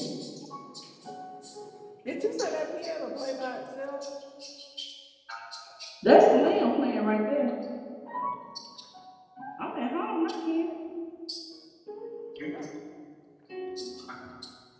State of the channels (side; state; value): both; identical; correlation 1.00